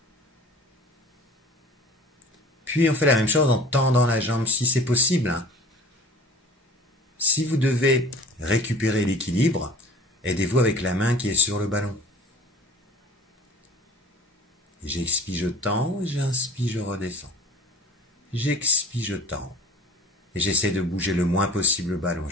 Puis on fait la même chose en tendant la jambe si c'est possible. Si vous devez récupérer l'équilibre, aidez-vous avec la main qui est sur le ballon. J'expire, je tends, j'inspire, je redescends. J'expire, je tends. Et j'essaie de bouger le moins possible le ballon.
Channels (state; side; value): normal; both; correlation 0.45